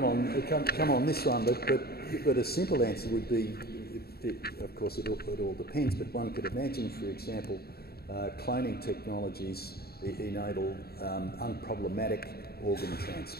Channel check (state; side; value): late; right; 0.45 ms